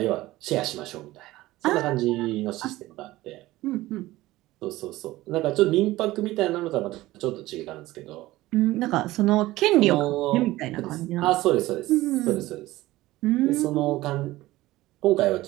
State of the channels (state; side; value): quieter; left; 17.5 dB